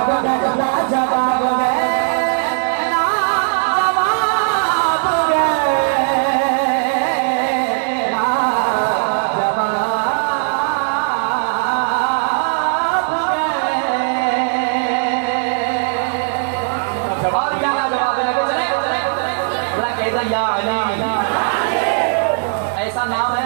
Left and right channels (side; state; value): left; silent; digital silence